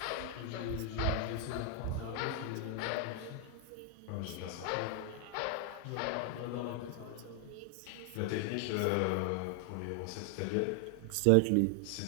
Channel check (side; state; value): both; different; correlation 0.00